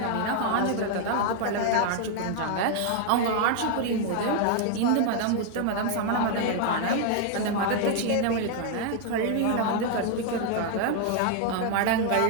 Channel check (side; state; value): both; different; correlation 0.00